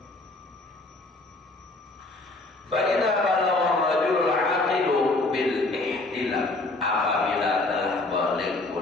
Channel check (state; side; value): quieter; right; 3.1 dB